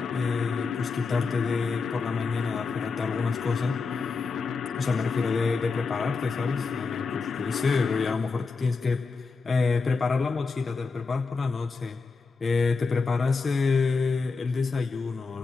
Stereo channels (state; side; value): quieter; right; 4.5 dB